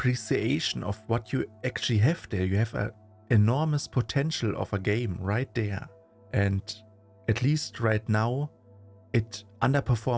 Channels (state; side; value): identical; both; correlation 1.00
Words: of what you actually have there. You have an enormous potential of a game right there. And at least right now, it